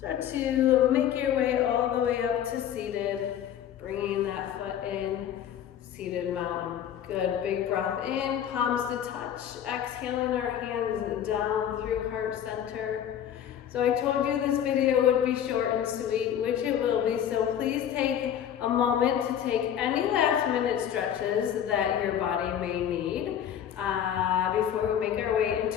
to make your way all the way up to seated, bringing that foot in, seated mountain. Good, big breath in, palms to touch, exhaling our hands down through heart center. So I told you this video would be short and sweet, which it will be, so please take a moment to take any last minute stretches that your body may need before we make our way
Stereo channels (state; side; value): quieter; right; 9.8 dB